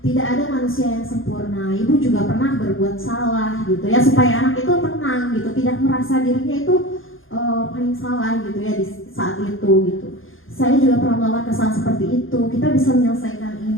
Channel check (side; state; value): right; late; 0.59 ms